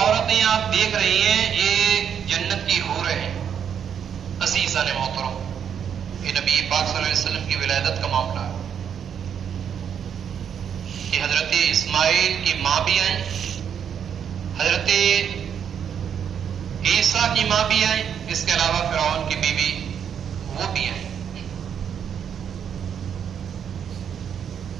آپ دیکھ رہی ہیں یہ جنت کی حوریں ہیں۔ عزیزان محترم، یہ نبی پاک صلی اللہ علیہ وسلم کی ولادت کا معاملہ ہے کہ حضرت اسماعیل کی ماں بھی آئیں، حضرت عیسیٰ کی ماں بھی آئیں، اس کے علاوہ فرعون کی بیوی وہ بھی آئیں۔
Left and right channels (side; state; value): left; quieter; 8.2 dB